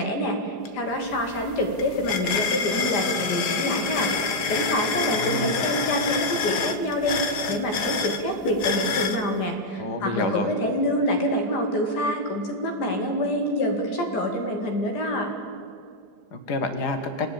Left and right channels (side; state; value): right; late; 4.9 ms